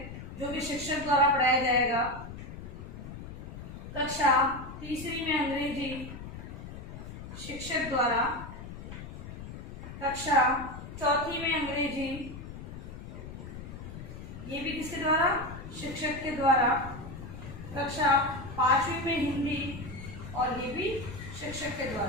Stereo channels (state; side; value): noise; left; rumble, 11 dB below the sound